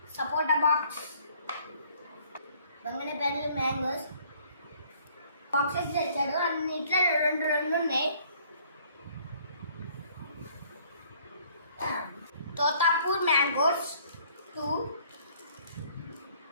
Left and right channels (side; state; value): both; inverted; correlation -0.60